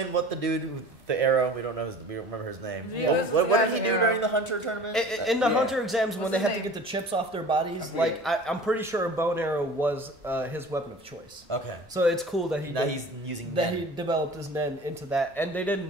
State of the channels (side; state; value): both; normal; correlation 0.42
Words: what the dude with the arrow? We don't know. We don't remember his name. Yeah, What did he do during the Hunter tournament? In the Hunter exams, when they had to get the chips off their bodies, like I'm pretty sure a bow and arrow was his weapon of choice. Okay. So it's cool that he's using that Nen. he developed his Nen into that, and they didn't